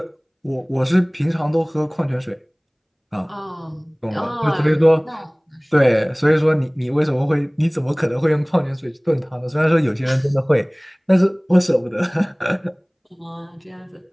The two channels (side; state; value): both; identical; correlation 1.00